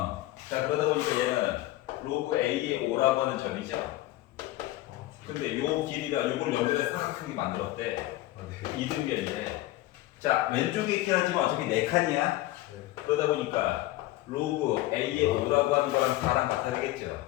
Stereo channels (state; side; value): quieter; right; 16.7 dB